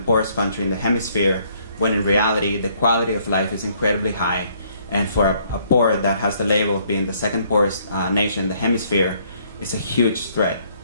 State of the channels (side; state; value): both; inverted; correlation -0.66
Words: poorest country in the hemisphere, when in reality the quality of life is incredibly high. And for a poor that has the label of being the second poorest nation in the hemisphere, it's a huge threat